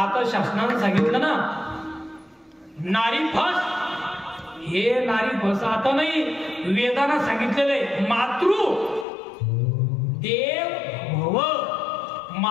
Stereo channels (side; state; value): right; drops out; at 9.1 s